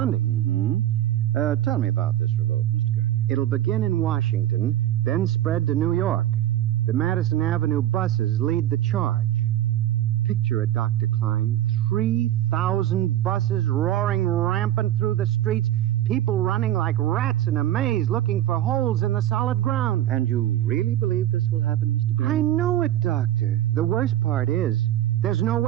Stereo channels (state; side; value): quieter; left; 12.8 dB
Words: Mm-hmm. Tell me about this revolt, Mr. Gurney. It'll begin in Washington, then spread to New York. The Madison Avenue buses lead the charge. Picture it, Dr. Klein. 3,000 buses roaring rampant through the streets, people running like rats in a maze looking for holes in the solid ground. And you really believe this will happen, Mr. Gurney? I know it, Doctor. The worst part is, there's no